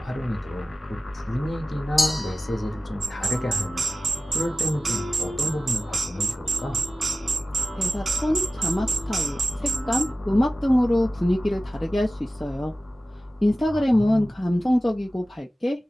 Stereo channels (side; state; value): both; normal; correlation 0.96